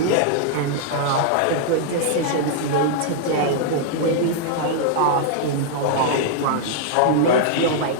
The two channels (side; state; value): both; different; correlation -0.01